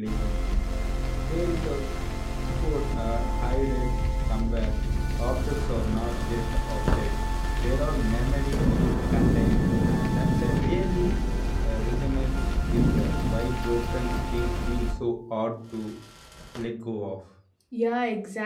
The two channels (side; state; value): both; identical; correlation 1.00